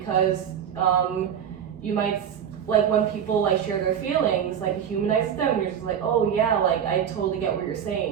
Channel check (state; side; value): quieter; left; 8.6 dB